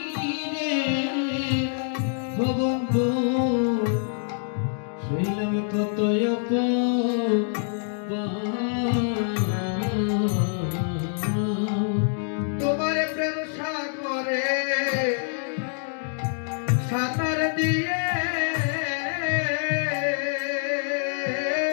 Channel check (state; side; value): silent; right; 61 dB below the other